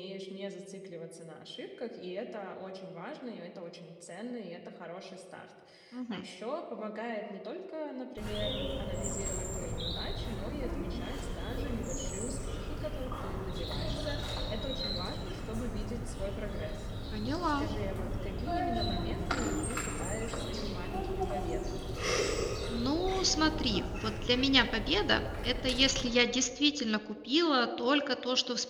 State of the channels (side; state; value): both; identical; correlation 1.00